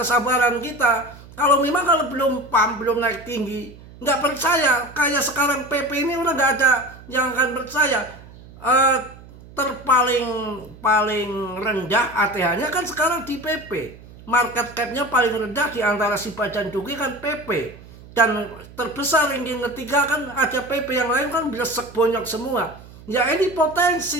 kita. Kalau memang kalau belum pam, belum naik tinggi, nggak percaya. Kayak sekarang PP ini udah nggak ada yang akan percaya. Paling rendah ATH-nya kan sekarang di PP. Market cap-nya paling rendah di antara Shiba dan Duki kan PP. Dan terbesar ranking ketiga kan ada PP, yang lain kan belesek bonyok semua. Ya ini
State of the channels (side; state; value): right; noise; hum, 20 dB below the sound